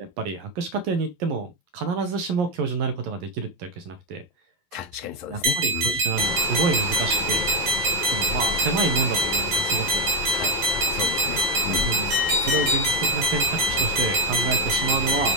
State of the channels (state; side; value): late; left; 11 ms